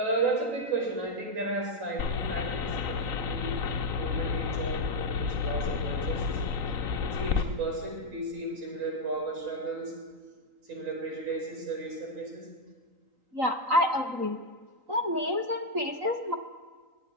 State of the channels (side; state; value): left; late; 3.9 ms